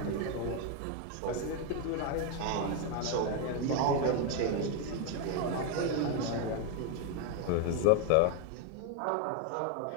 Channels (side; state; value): both; different; correlation 0.01